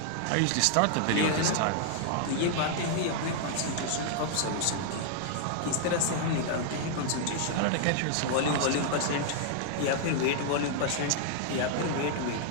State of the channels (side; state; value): both; different; correlation 0.00